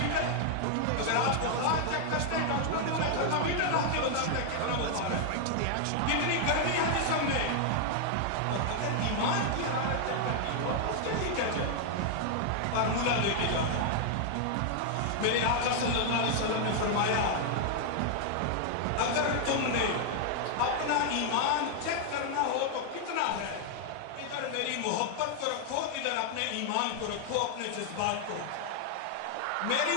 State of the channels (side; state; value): both; different; correlation 0.00